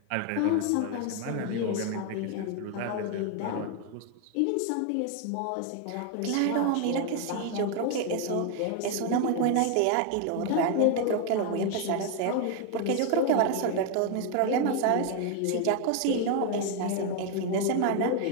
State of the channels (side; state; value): both; different; correlation 0.01